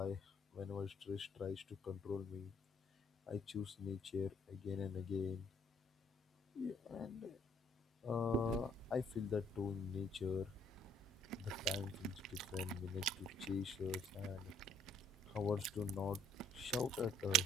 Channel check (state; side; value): normal; both; correlation 0.63